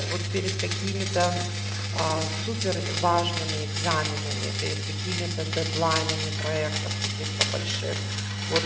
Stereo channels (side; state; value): both; identical; correlation 1.00